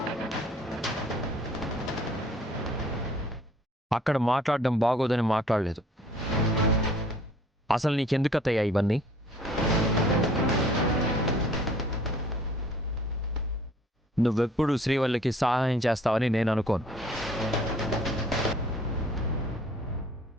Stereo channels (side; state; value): both; normal; correlation 0.55